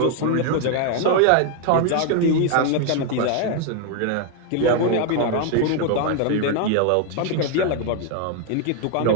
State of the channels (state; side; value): different; both; correlation 0.00